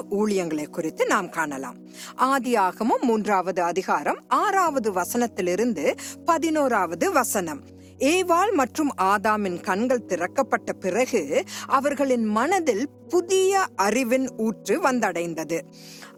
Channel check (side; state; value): both; identical; correlation 1.00